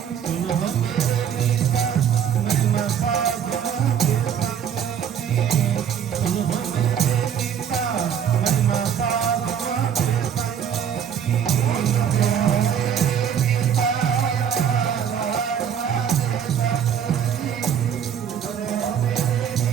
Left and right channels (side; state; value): left; quieter; 8.3 dB